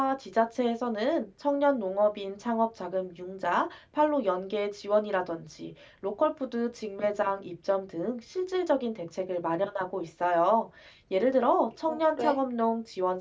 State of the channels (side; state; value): both; identical; correlation 1.00